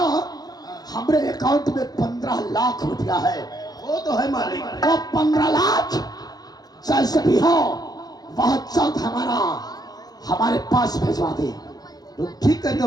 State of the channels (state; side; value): late; right; 0.19 ms